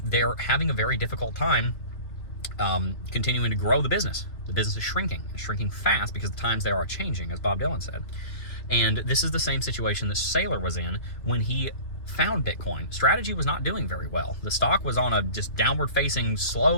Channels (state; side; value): late; right; 2.7 ms